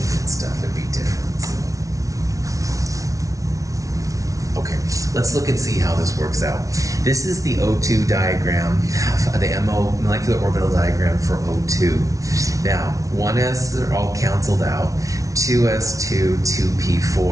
stuff. It'd be different. So. Okay, let's look and see how this works out. This is the O2 diagram, the MO molecular orbital diagram for O2. Now, 1s are all canceled out, 2s2,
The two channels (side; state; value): left; late; 0.17 ms